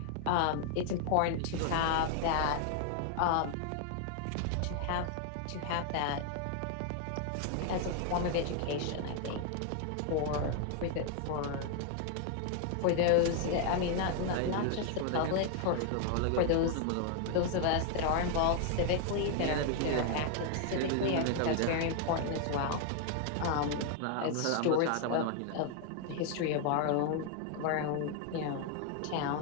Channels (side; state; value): both; different; correlation 0.00